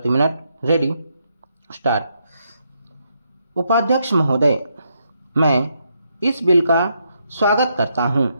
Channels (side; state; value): both; inverted; correlation -0.78